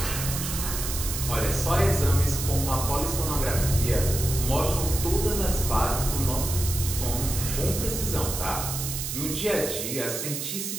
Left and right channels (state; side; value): noise; right; hiss, 4 dB below the sound